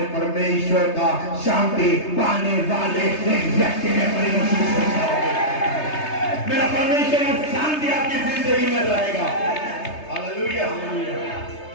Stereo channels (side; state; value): right; late; 3.3 ms